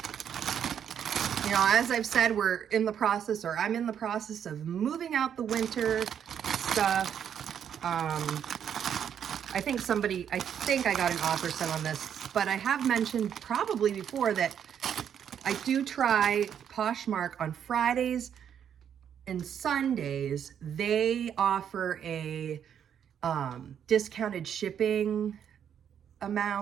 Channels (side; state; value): left; quieter; 8.7 dB